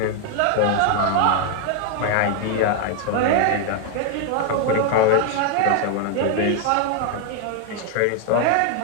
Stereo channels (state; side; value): different; both; correlation 0.00